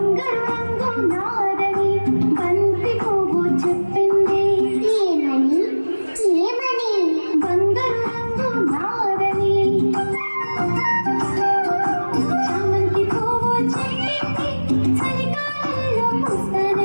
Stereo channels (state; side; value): inverted; both; correlation -1.00